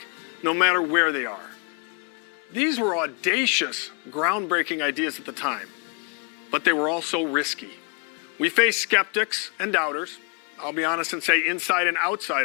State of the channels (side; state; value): right; quieter; 37.1 dB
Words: no matter where they are. These were audacious, groundbreaking ideas at the time, but they were also risky. We faced skeptics and doubters, I'll be honest and say inside and